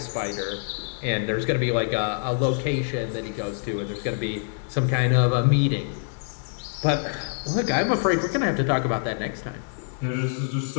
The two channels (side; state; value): right; silent; digital silence